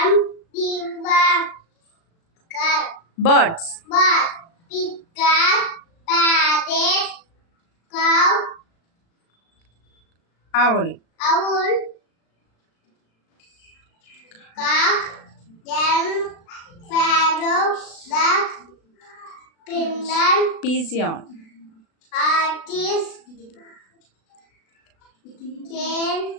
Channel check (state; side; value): late; right; 36 ms